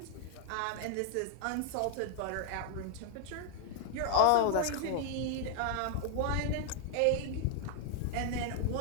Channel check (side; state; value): both; different; correlation 0.00